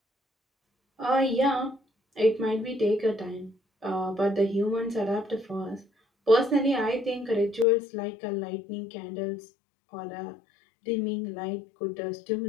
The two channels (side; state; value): right; drops out; at 7.7 s